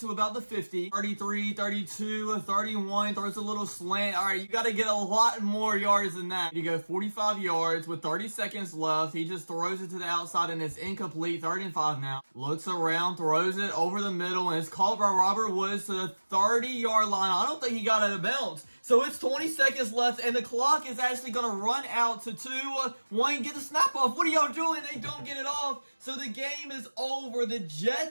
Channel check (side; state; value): both; inverted; correlation -1.00